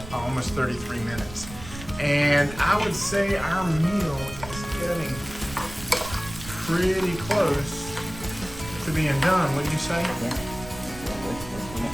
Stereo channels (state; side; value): noise; right; rumble, 14 dB below the sound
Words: almost 33 minutes. And I would say our meal is getting pretty close to being done. What do you say?